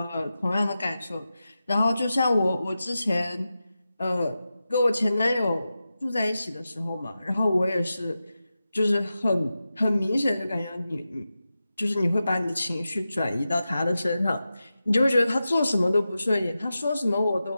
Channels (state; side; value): inverted; both; correlation -0.92